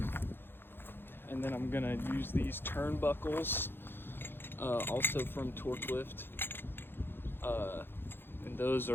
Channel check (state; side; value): late; right; 0.10 ms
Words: And then I'm going to use these turnbuckles, also from TORKLIFT. And those